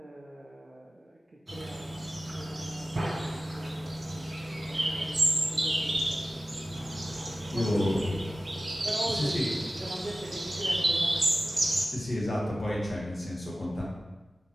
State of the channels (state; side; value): normal; both; correlation 0.95